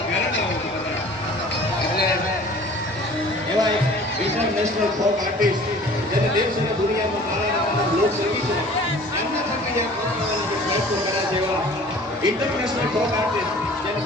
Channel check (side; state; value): both; normal; correlation 0.47